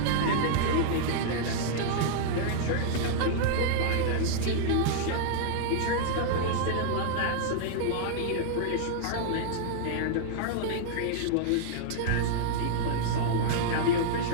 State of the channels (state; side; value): different; both; correlation -0.01